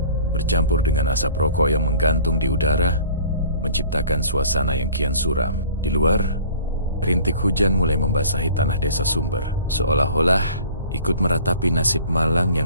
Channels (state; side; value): inverted; both; correlation -0.47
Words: bercampur dengan asap rokok yang menggantung di udara menciptakan suasana yang kian suram. Di luar, rintik hujan mulai membasahi tanah desa Sumber, seolah-olah ikut meratapi nasib malang